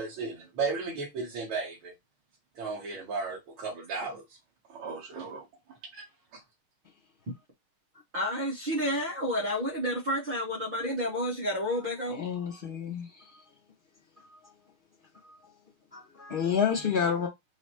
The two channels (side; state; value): left; late; 6.5 ms